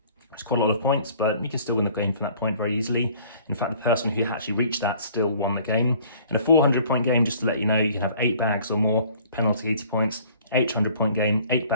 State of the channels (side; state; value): both; inverted; correlation -0.54